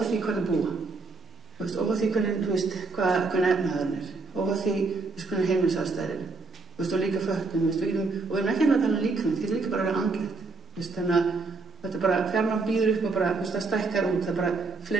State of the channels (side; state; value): left; quieter; 3.9 dB